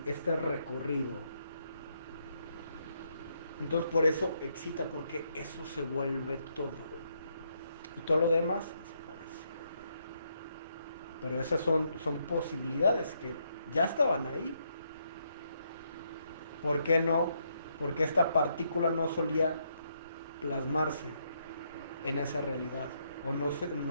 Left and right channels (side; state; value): both; inverted; correlation -0.76